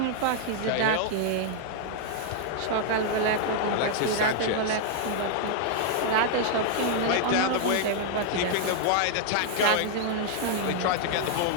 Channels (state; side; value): different; both; correlation 0.00